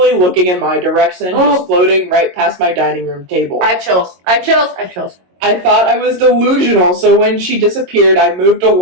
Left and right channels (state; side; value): late; left; 22 ms